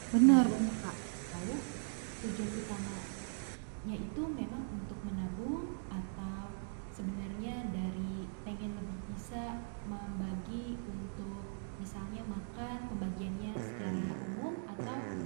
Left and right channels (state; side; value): silent; left; digital silence